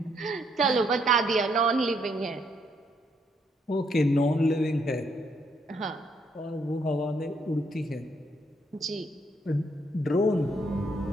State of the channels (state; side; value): normal; both; correlation 0.73